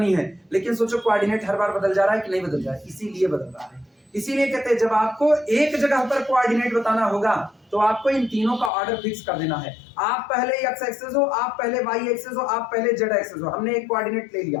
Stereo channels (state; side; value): drops out; right; at 8.7 s